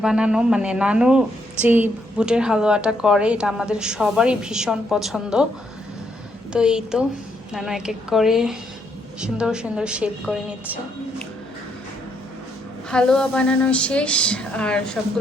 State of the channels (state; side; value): normal; both; correlation 0.74